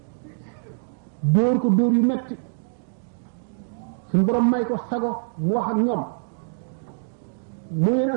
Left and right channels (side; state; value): left; silent; digital silence